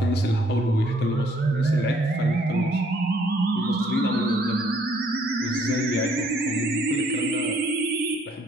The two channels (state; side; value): normal; both; correlation 0.64